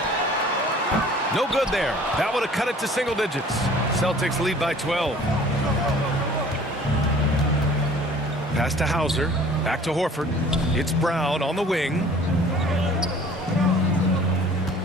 No good there. That would have cut it to single digits. Celtics lead by 12. Pass to Hauser. Back to Horford. It's Brown on the wing.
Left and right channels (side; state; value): both; normal; correlation 0.50